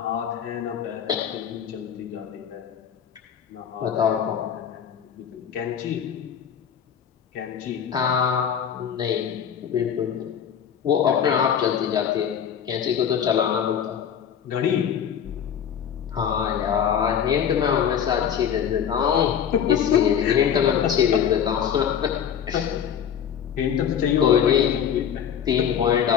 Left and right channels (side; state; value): right; quieter; 8.5 dB